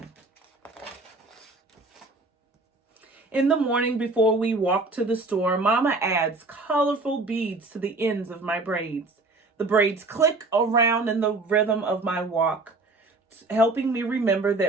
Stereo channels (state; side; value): quieter; left; 3.3 dB